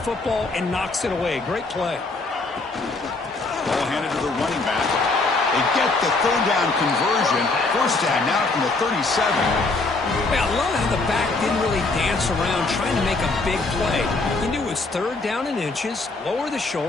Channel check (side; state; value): right; quieter; 3.5 dB